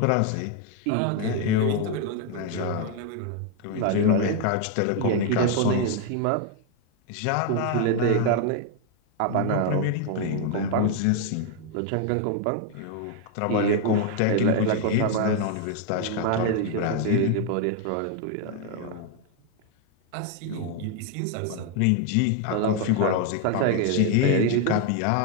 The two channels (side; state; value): both; different; correlation 0.01